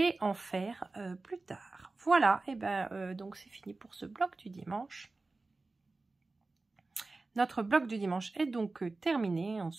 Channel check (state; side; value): quieter; left; 3.4 dB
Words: en faire plus tard. Voilà, et ben donc c'est fini pour ce bloc du dimanche. Notre bloc du dimanche est donc terminé. On